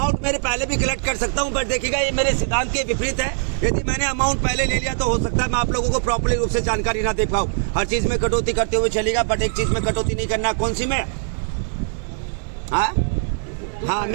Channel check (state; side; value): silent; left; digital silence